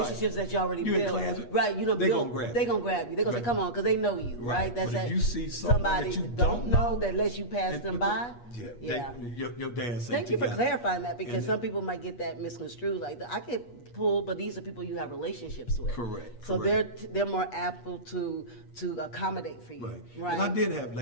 that you already built. Class, right, they build, gonna grab you. They gonna grab you. They gonna say, come on, because they know you, right? That's but if that, you see somebody that you don't know that lets you pass them by. Your dance. Thank you for clarifying that, because some people might get that misconstrued. Like, I get pulled, but these are people you have relationships with. Correct. So they're more able to accommodate for you. Right. And I did have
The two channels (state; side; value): late; right; 8.4 ms